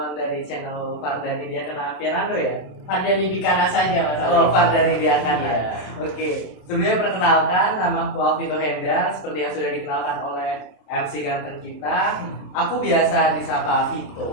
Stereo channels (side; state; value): right; late; 27 ms